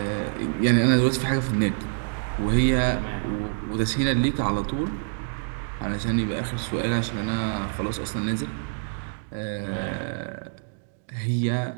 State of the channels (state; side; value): silent; left; digital silence